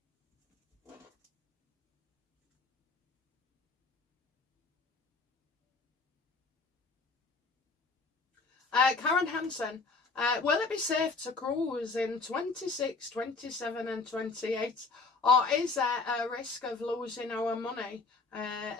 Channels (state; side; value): quieter; right; 4.0 dB